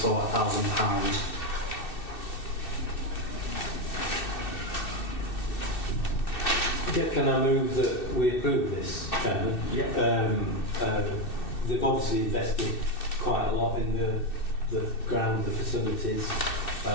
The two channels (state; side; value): late; right; 2.6 ms